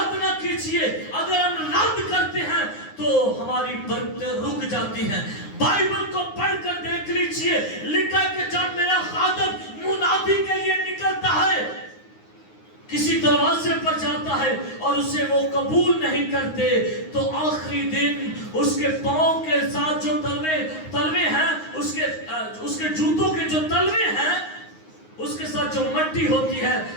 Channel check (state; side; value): late; right; 9.6 ms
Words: نہ کیجیے. اگر ہم رد کرتے ہیں تو ہماری برکتیں رک جاتی ہیں. بائبل کو پڑھ کر دیکھ لیجئے، لکھا کہ جب میرا خادم منادی کے لیے نکلتا ہے، کسی دروازے پر جاتا ہے اور اسے وہ قبول نہیں کرتے، تو آخری دن اس کے پاؤں کے ساتھ جو تلوے ہیں، اس کے جوتوں کے جو تلوے ہیں، اس کے ساتھ جو مٹی ہوتی ہے،